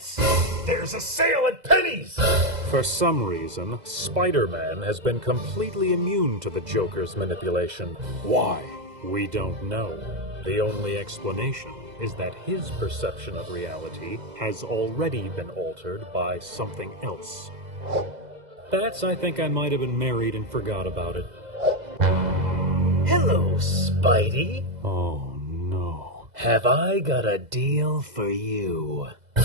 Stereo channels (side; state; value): left; late; 2.0 ms